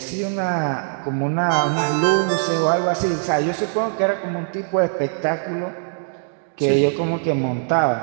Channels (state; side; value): silent; left; digital silence